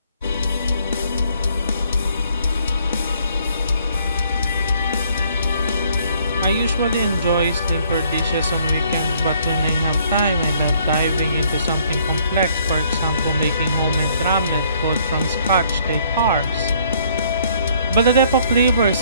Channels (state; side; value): inverted; both; correlation -0.64